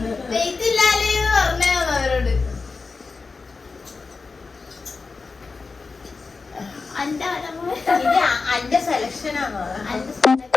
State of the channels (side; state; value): right; quieter; 4.3 dB